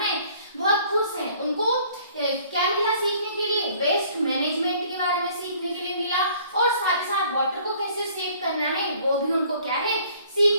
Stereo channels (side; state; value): both; inverted; correlation -0.56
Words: बहुत खुश हैं। उनको क्या मिला सीखने के लिए, वेस्ट मैनेजमेंट के बारे में सीखने के लिए मिला, और साथ ही साथ वाटर को कैसे सेव करना है वो भी उनको क्या है,